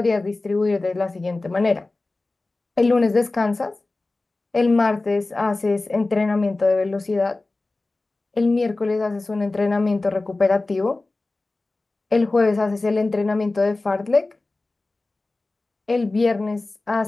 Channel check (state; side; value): quieter; right; 3.2 dB